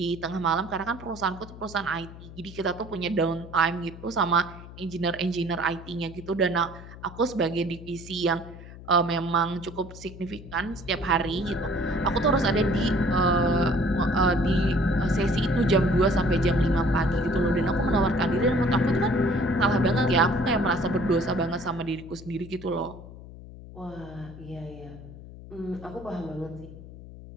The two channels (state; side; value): noise; left; hum, 16 dB below the sound